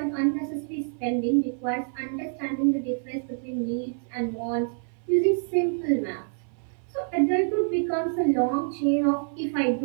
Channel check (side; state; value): left; silent; 58 dB below the other